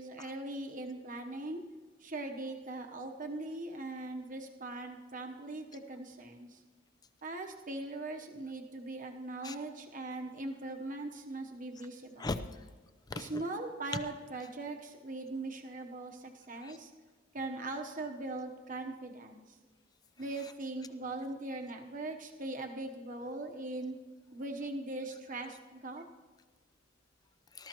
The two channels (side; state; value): both; normal; correlation 0.38